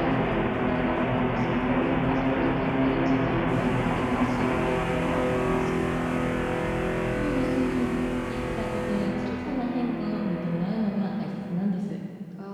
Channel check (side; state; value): both; identical; correlation 1.00